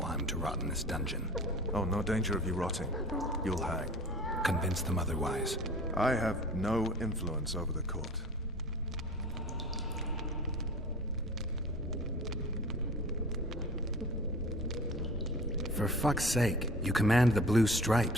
I'm to rot in this dungeon. Oh, no danger of you rotting. You'll hang. Convince them otherwise. I have no influence over the court. For fuck's sake, you command the Blue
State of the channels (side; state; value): both; normal; correlation 0.41